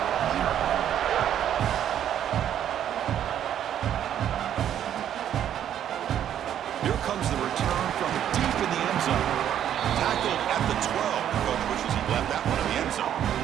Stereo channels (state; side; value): quieter; left; 10.3 dB